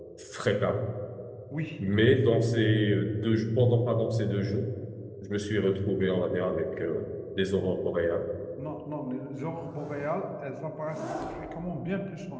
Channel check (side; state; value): both; identical; correlation 1.00